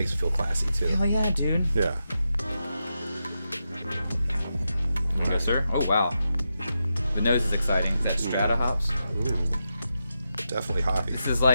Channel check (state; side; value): inverted; both; correlation -0.87